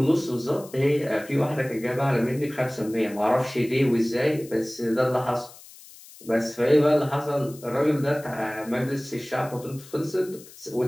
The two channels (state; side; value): noise; left; hiss, 20 dB below the sound